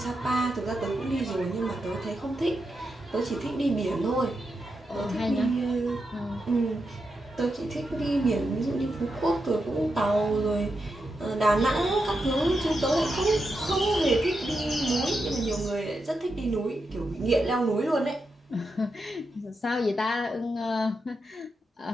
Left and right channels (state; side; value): normal; both; correlation 0.86